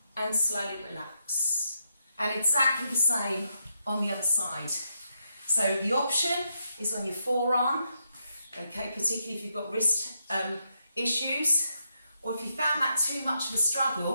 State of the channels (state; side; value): inverted; both; correlation -0.81